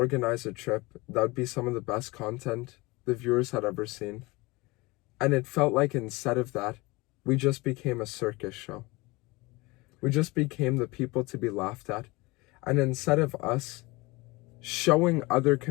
a trip that would be some of the best content the viewers had ever seen. And it felt like instead of that, we just became a circus show. We just became the people to be laughed at. And instead of us showing other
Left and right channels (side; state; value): right; quieter; 23.5 dB